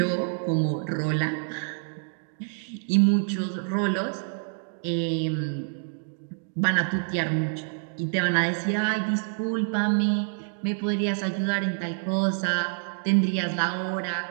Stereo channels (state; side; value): silent; left; digital silence